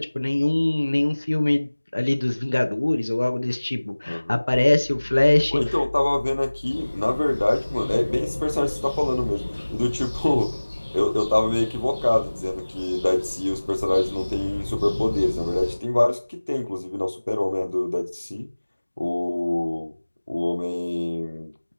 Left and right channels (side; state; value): both; inverted; correlation -1.00